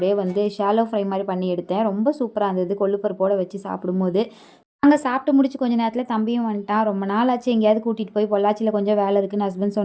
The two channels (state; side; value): identical; both; correlation 1.00